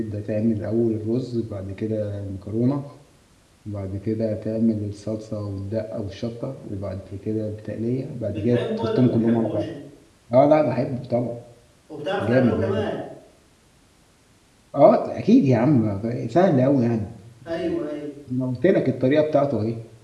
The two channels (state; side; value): identical; both; correlation 1.00